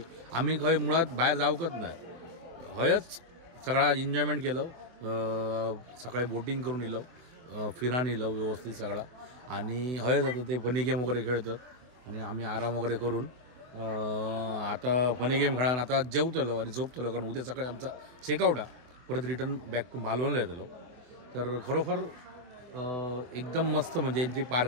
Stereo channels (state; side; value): late; left; 24 ms